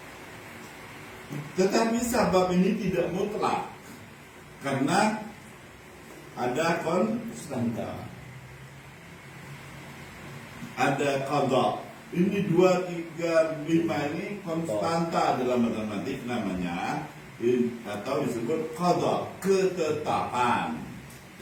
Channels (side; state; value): both; identical; correlation 1.00